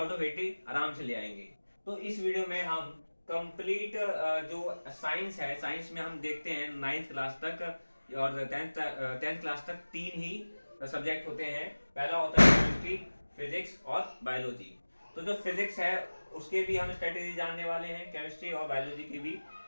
ऑफ 80 आराम से ले आएंगे। तो इस वीडियो में हम कंप्लीट जो साइंस है, साइंस में हम देखते हैं 9th क्लास तक और 10th क्लास तक तीन ही सब्जेक्ट होते हैं। पहला होता है केमिस्ट्री, फिजिक्स और बायोलॉजी। तो जो फिजिक्स है उसके भी हम स्ट्रेटेजी जानने वाले हैं, केमिस्ट्री और बायोलॉजी की भी।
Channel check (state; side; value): inverted; both; correlation -1.00